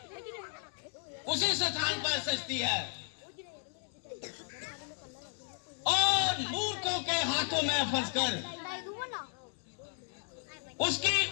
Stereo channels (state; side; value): silent; right; 55 dB below the other